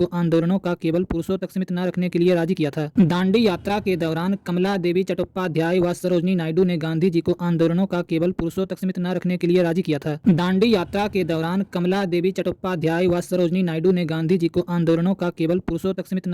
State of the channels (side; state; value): both; identical; correlation 1.00